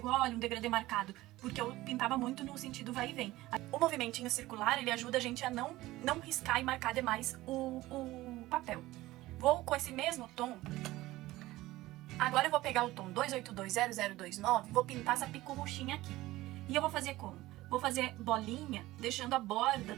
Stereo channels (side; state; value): left; quieter; 17.6 dB